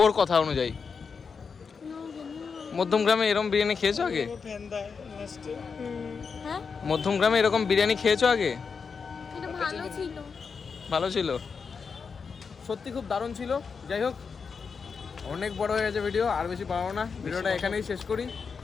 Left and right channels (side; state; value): right; quieter; 5.6 dB